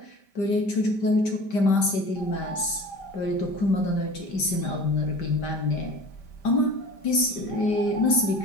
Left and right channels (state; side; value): late; right; 5.1 ms